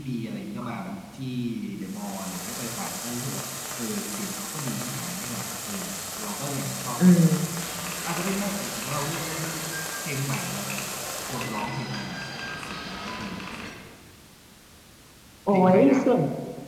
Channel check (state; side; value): identical; both; correlation 1.00